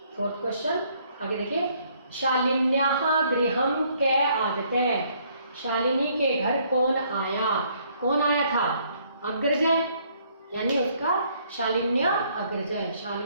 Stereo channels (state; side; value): inverted; both; correlation -0.66